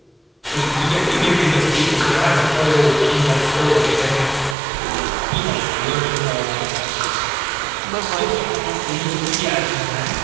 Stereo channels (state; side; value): drops out; left; at 4.5 s